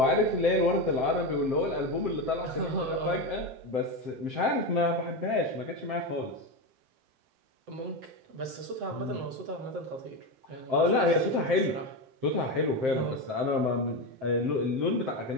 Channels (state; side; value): late; left; 7.7 ms